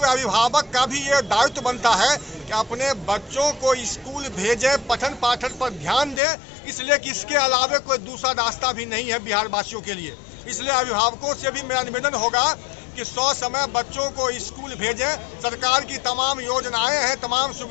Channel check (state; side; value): drops out; right; at 6.2 s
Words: अभिभावक का भी ये दायित्व बनता है कि अपने बच्चों को स्कूल भेजें, पठन पाठन पर ध्यान दें, इसलिए कि इसके अलावा कोई दूसरा रास्ता भी नहीं है बिहार वासियों के लिए। इसलिए अभिभावकों से भी मेरा निवेदन होगा कि 100 समय बच्चों को स्कूल भेजें। सरकार की तमाम योजनाएं हैं, तमाम